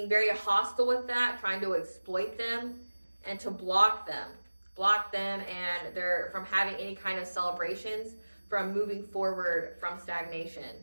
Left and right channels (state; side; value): inverted; both; correlation -1.00